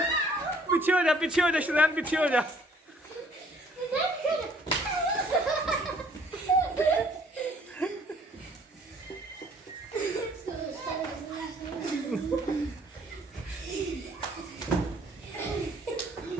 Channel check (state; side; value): normal; both; correlation 0.59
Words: पीछे हो जा शरैन, पीछे हो जा।